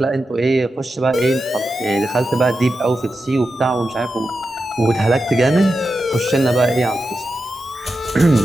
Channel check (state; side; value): normal; both; correlation 0.90